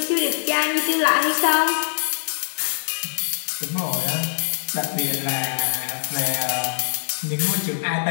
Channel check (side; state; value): right; silent; digital silence